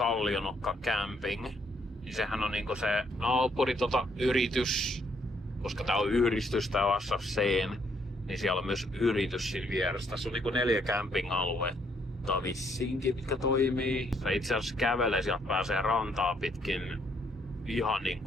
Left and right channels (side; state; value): both; normal; correlation 0.70